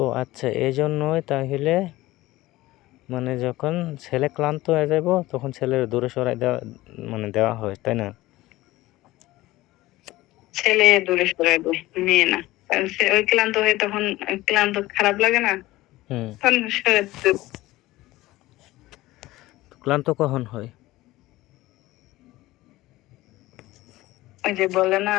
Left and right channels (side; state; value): right; quieter; 17.9 dB